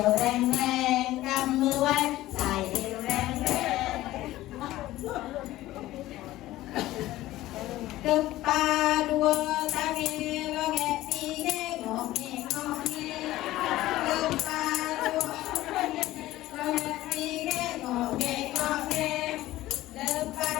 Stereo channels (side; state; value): right; quieter; 16.0 dB